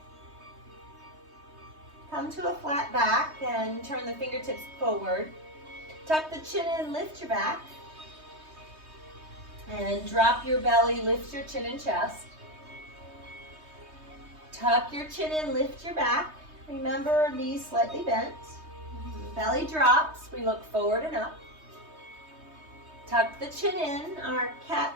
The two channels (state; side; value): late; left; 3.2 ms